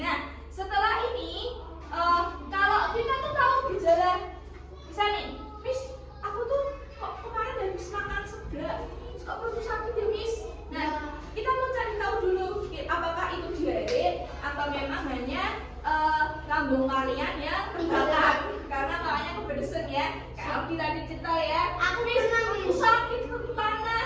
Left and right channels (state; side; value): identical; both; correlation 1.00